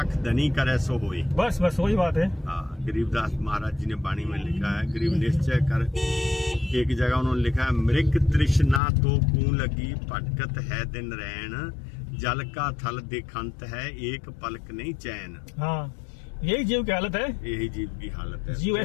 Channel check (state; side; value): drops out; right; at 8.8 s